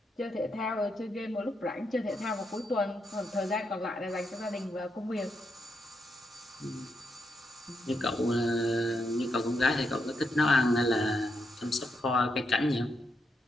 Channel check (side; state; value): both; normal; correlation 0.81